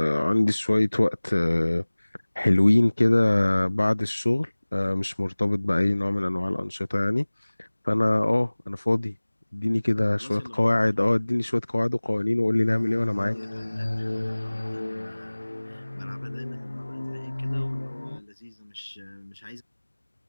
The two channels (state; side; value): inverted; both; correlation -1.00